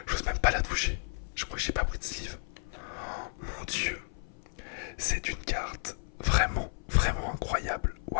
J'ose même pas la toucher. Je crois que j'ai pas pris de sleeve. Mon dieu. C'est une carte vraiment, vraiment incroyable.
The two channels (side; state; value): right; silent; 56 dB below the other